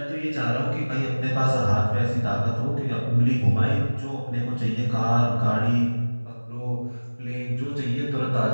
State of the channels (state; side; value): inverted; both; correlation -1.00